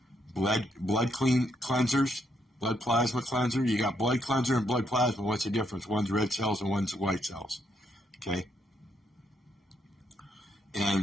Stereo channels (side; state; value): both; normal; correlation 0.75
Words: blood cleansers, blood plasma cleanser. You got blood cleanser and blood plasma. What's the difference? One's red cells and one's white cells. Okay.